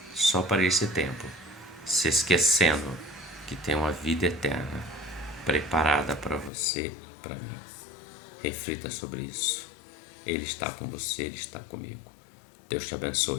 só para esse tempo, se esquecendo que tem uma vida eterna preparada para você e para mim. Reflita sobre isso. Ele está com você, Ele está comigo. Deus te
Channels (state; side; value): drops out; right; at 6.5 s